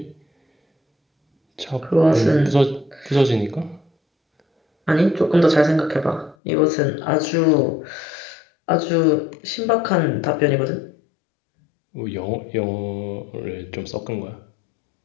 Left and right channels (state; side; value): drops out; right; at 6.4 s